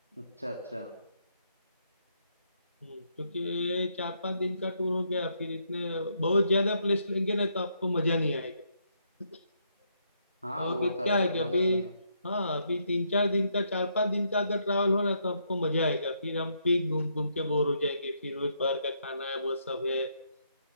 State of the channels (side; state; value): both; inverted; correlation -0.76